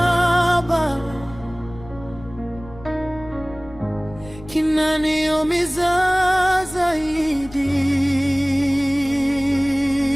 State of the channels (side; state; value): left; noise; rumble, 18 dB below the sound